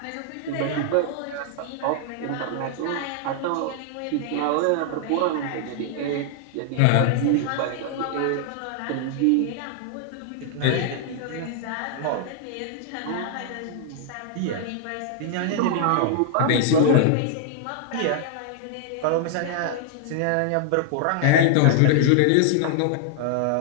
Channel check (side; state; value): both; different; correlation -0.01